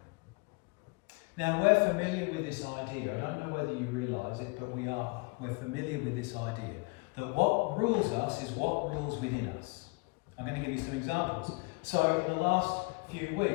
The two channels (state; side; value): quieter; right; 29.8 dB